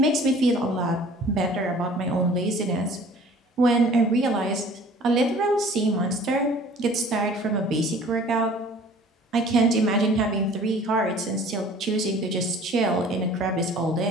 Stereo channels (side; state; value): both; normal; correlation 0.49